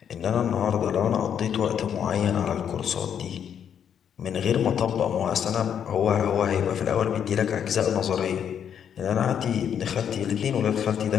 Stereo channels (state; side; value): quieter; right; 8.5 dB